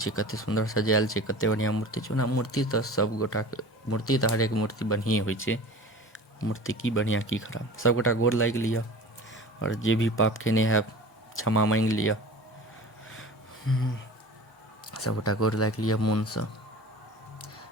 कतेक सुन्दर सजायल छै, कतेक बढ़िआँ मूर्ति छै। ओना मूर्ति तऽ सभगोटाके, मूर्ति तऽ हरेक मूर्ति बढ़िएँ होइ छै, मूर्ति की बढ़िया की खराब। सबगोटा गोर लागि लिअ और जे भी पाप केने हैब क्षमा मांगि लिअ। सबगोटा गोर लागि लिअ मोनसँ।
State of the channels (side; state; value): both; normal; correlation 0.38